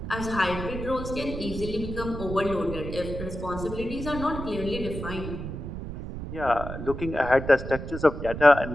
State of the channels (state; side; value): noise; right; rumble, 7 dB below the sound